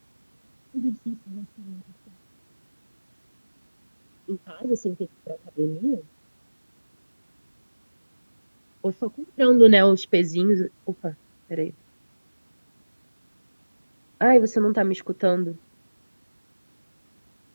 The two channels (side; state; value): both; inverted; correlation -1.00